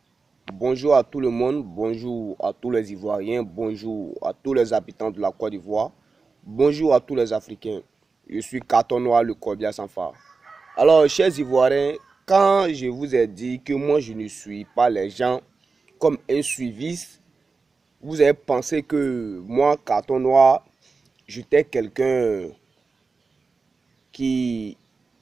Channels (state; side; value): quieter; left; 4.4 dB